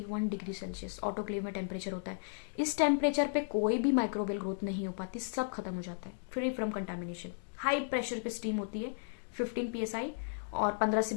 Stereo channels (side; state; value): right; silent; digital silence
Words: डिग्री सेल्सियस ऑटोक्लेव में टेम्परेचर होता है। इस टेम्परेचर पे कोई भी माइक्रोबियल ग्रोथ नहीं हो पाती, सब खत्म हो जाता है, free from contamination. High pressure पे स्टीम होती है 15 psi, और 15 से